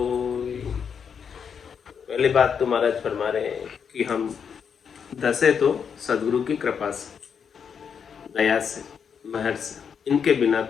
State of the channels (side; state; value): right; quieter; 7.0 dB